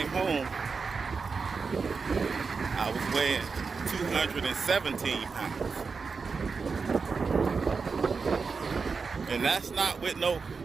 home, I was weighing 217 pounds. And that's not with no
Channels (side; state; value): left; quieter; 4.9 dB